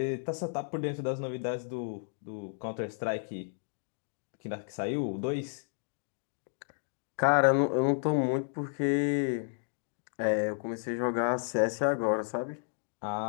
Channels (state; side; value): silent; right; digital silence